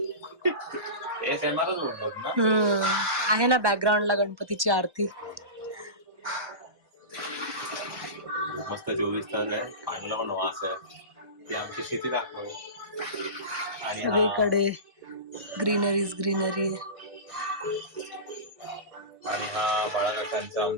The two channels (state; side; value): late; left; 1.1 ms